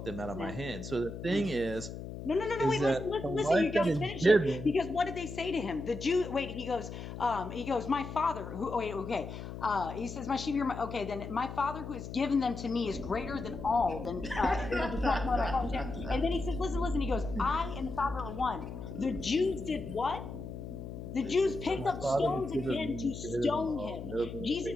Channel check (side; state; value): left; noise; hum, 9 dB below the sound